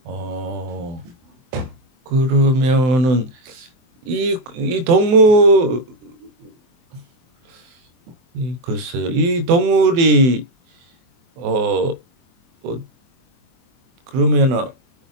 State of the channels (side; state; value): left; late; 23 ms